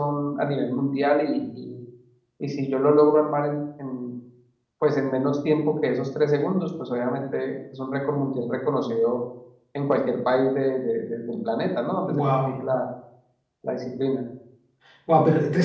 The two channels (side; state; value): both; identical; correlation 1.00